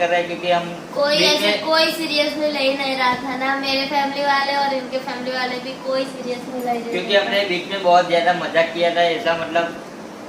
रहे हैं। क्योंकि हम कोई सीरियसली ले ही नहीं रहा था ना, मेरे फैमिली वाले और इनके फैमिली वाले भी कोई सीरियसली ले, क्योंकि हमने बीच में बहुत ज़्यादा मजाक किया था। ऐसा मतलब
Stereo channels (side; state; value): both; identical; correlation 1.00